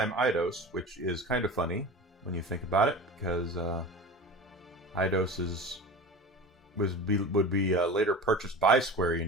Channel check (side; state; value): both; normal; correlation 0.34